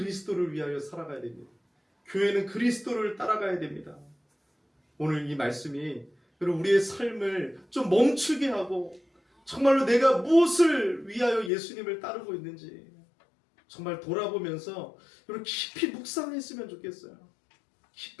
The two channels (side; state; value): right; drops out; at 11.5 s